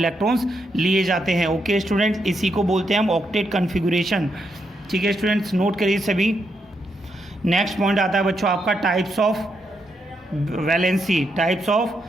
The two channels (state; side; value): normal; both; correlation 0.80